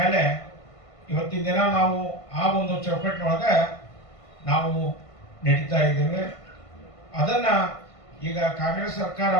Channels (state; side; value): late; right; 1.5 ms